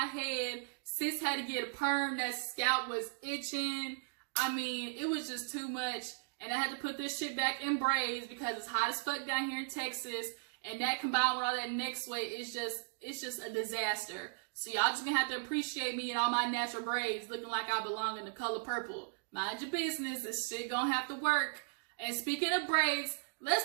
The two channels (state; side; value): silent; left; digital silence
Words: head. Sis had to get a perm. That scalp was itching. I mean, it was just too much. And I had to put this shit back in braids because it's hot as fuck down here in Texas. And that combined with all that neck sweat, it's just a disaster. So y'all just gonna have to appreciate me and all my natural braids looking like I belong in the color purple. Mind your business, this shit gonna have to work. And speaking of braids,